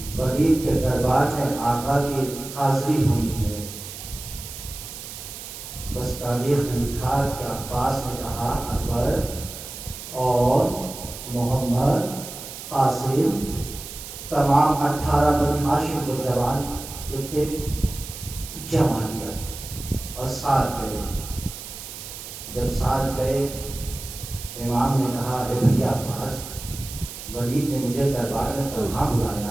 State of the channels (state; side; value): noise; right; hiss, 11 dB below the sound